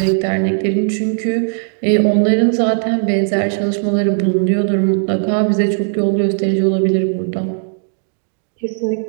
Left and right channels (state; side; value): silent; left; digital silence